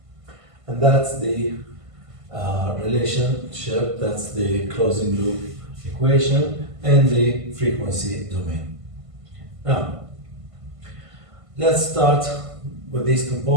And that's the relationship, that's the closing loop equation in the frequency domain. Now, let's start with these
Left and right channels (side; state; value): left; late; 1.5 ms